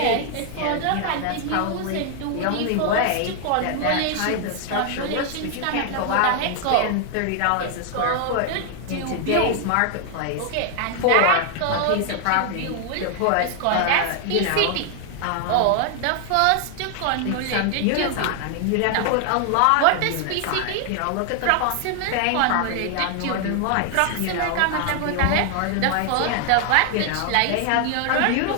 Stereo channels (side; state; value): both; different; correlation 0.00